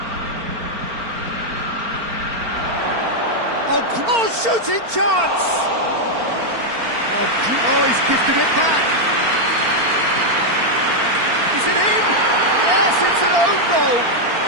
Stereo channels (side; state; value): left; late; 4.4 ms